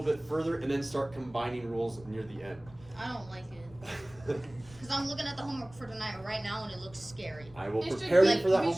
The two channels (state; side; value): noise; left; rumble, 23 dB below the sound